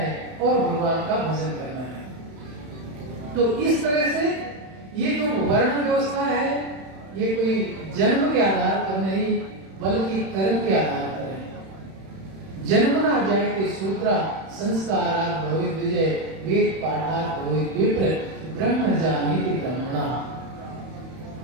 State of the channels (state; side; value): late; left; 31 ms